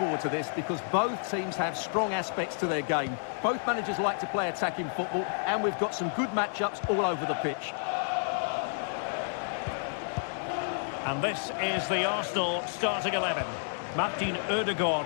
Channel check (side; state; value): right; silent; 58 dB below the other